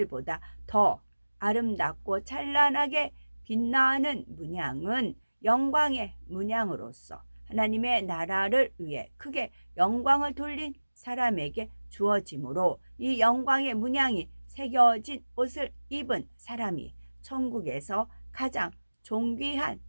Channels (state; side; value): inverted; both; correlation -1.00